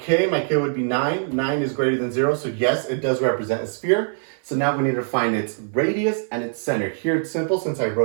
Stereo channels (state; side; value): silent; left; 58 dB below the other